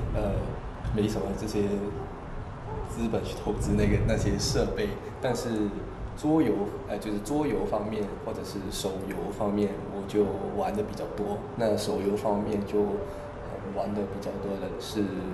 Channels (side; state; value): both; identical; correlation 1.00